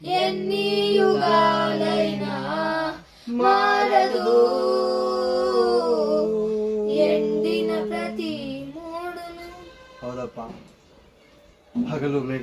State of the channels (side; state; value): both; identical; correlation 1.00